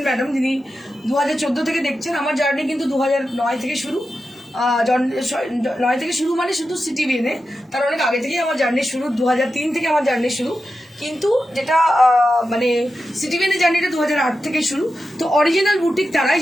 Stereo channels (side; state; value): both; normal; correlation 0.91